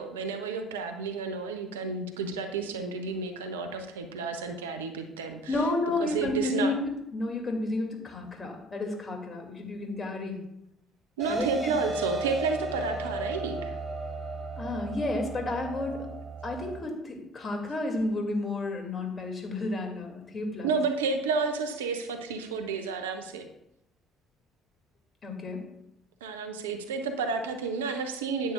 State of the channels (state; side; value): normal; both; correlation 0.39